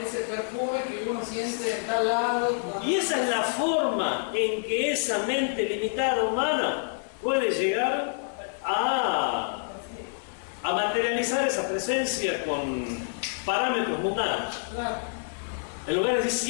perfume que uno siente en tal lado. y esa es la forma en que esa mente limitada humana puede llegar a materializar esa presencia con parámetros mundanos. Claro. En lugar de decir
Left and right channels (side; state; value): right; silent; digital silence